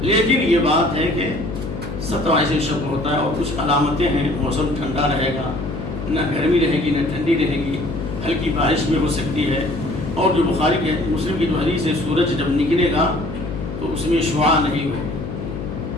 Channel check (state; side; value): noise; left; hum, 7 dB below the sound